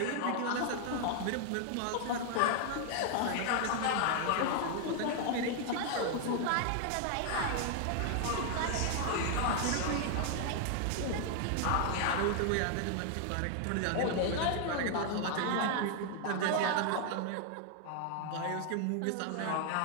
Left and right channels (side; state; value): both; different; correlation 0.00